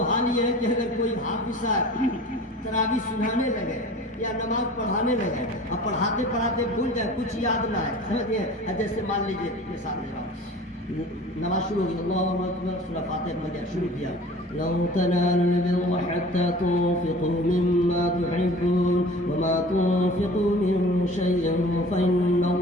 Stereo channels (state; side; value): normal; both; correlation 0.43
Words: हाल ये है कि अगर कोई हाफिज तरावी सुनाने लगे या नमाज पढ़ाने लगे, अब पढ़ाते पढ़ाते भूल जाए, कुछ याद ना है, समझिए। जैसे मान लीजिए मिसाल दे रहा हूँ, नमाज शुरू हो गई, अल्लाहु अकबर, सूरह फातिहा पढ़ शुरू किया, लं तनालुल बिर्रा हत्ता तुन्फिकू मिम्मा तुहिब्बून वमा तुन्फिकू मिन शैइन